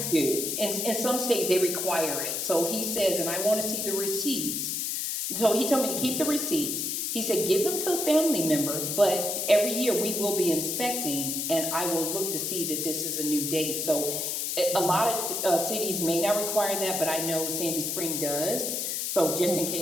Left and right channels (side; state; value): left; noise; hiss, 1 dB below the sound